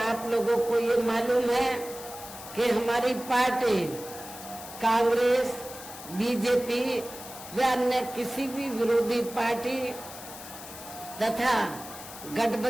लोगों को ये मालूम है कि हमारी पार्टी कांग्रेस, बीजेपी व अन्य किसी भी विरोधी पार्टी तथा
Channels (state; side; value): noise; left; hiss, 14 dB below the sound